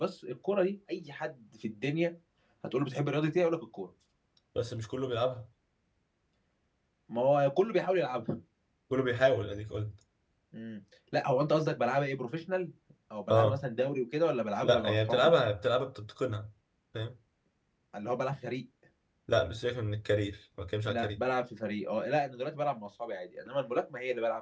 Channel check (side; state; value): both; identical; correlation 1.00